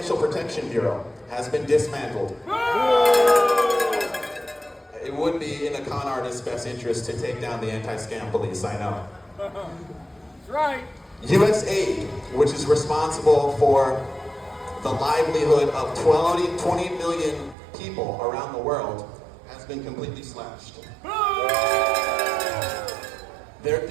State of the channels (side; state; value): left; drops out; at 17.6 s